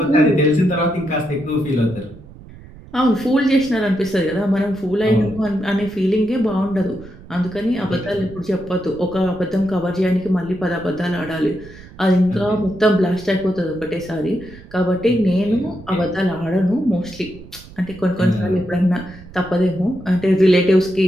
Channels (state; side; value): noise; right; rumble, 19 dB below the sound